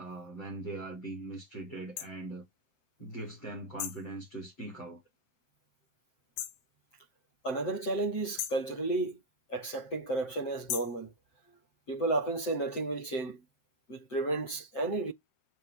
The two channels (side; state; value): right; late; 7.7 ms